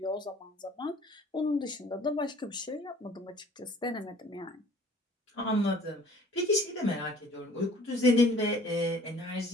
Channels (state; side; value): normal; both; correlation 0.52